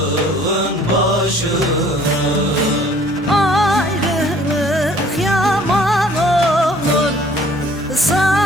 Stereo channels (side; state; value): both; normal; correlation 0.55